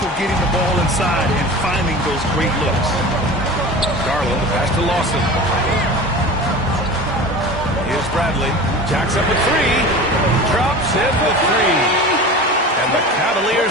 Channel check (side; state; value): both; normal; correlation 0.35